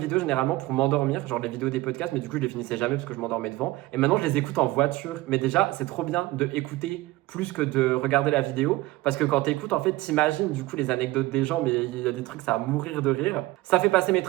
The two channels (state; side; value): quieter; left; 18.9 dB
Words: généralement pour m'endormir, genre les vidéos des podcasts, mais du coup je les finissais jamais parce que je m'endormais devant. Et maintenant je les écoute en voiture. Mais déjà c'est trop bien de écouter plus que de regarder la vidéo. Parce que quand t'écoutes en fait t'imagines du coup les anecdotes des gens, mais il y a des trucs ça va mourir de rire. Ça fait passer mes